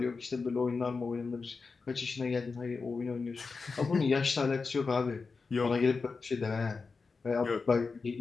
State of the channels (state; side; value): quieter; right; 4.5 dB